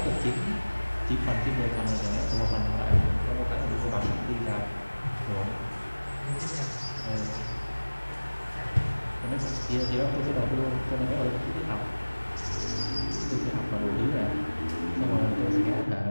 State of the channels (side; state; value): both; inverted; correlation -1.00